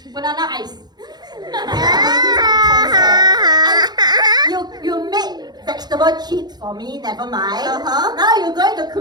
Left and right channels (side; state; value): left; late; 0.20 ms